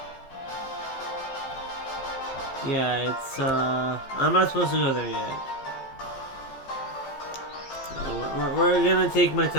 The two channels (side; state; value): right; late; 15 ms